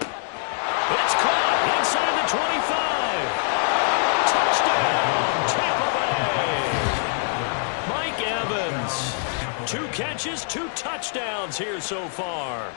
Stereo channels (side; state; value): right; silent; 59 dB below the other